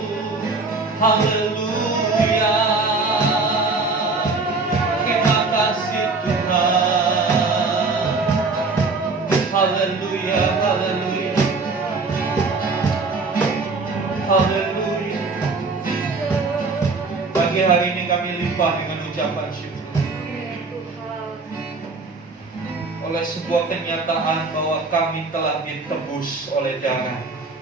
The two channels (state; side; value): quieter; left; 3.8 dB